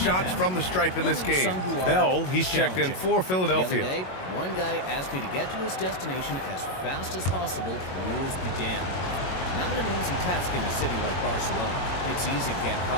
from the stripe in this game. Bell, he's checked in for The other Philadelphia. day, one guy asked me to get to his destination as fast as possible, rules be damned. Not an easy task in a city like Barcelona. It's easy to get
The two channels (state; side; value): late; right; 22 ms